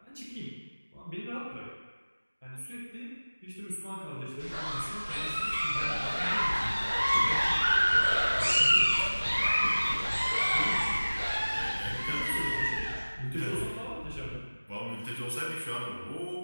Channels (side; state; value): both; inverted; correlation -1.00